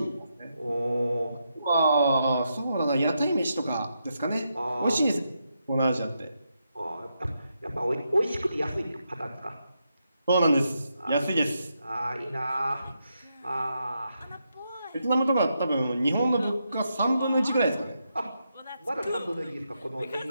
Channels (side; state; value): both; inverted; correlation -0.83